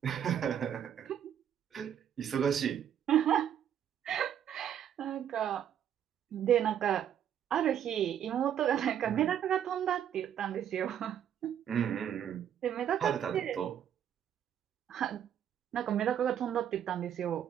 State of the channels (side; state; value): left; quieter; 9.6 dB